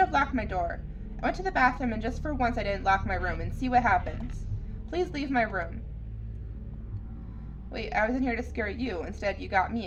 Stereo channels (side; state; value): both; identical; correlation 1.00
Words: locked my door. I went to the bathroom and just for once I didn't lock my room and see what happens. Please leave my room. Wait, I was in here to scare you. Instead, you got me